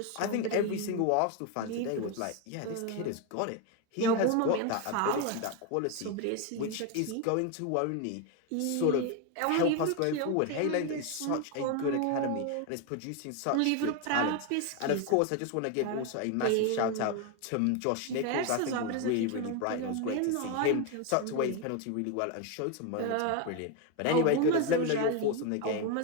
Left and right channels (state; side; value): different; both; correlation 0.02